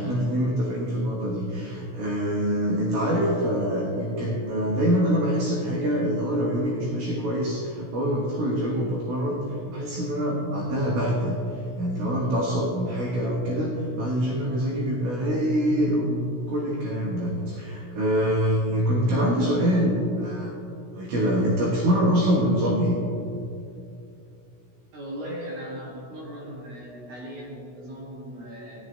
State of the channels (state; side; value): late; left; 16 ms